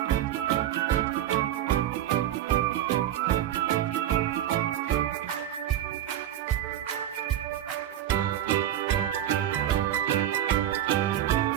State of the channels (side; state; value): left; quieter; 11.8 dB